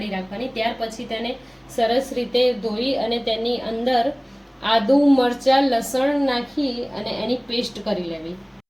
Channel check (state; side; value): identical; both; correlation 1.00